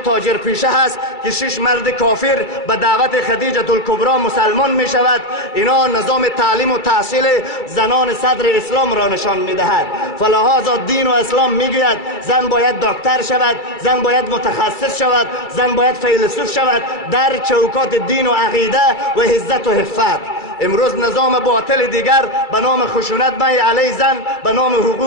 پیشه هست که 6 مرد کافر به دعوت خدیجه الکبرا مسلمان می شود. اینا نظام تعلیم و تحصیل زنان صدر اسلام را نشان می دهد. فلهذا دین و اسلام می گوید زن باید دکتر شود، زن باید متخصص شود، زن باید فیلسوف شود در چوکات دین و عقیده و عزت و حفت. امروز نظام باطل دیگر به نام خشونت علیه زن، به نام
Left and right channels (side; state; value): right; late; 2.3 ms